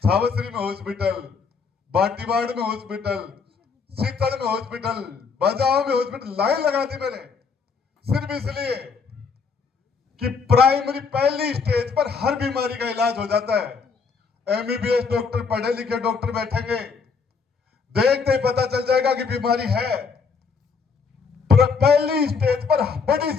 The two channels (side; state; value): right; quieter; 5.4 dB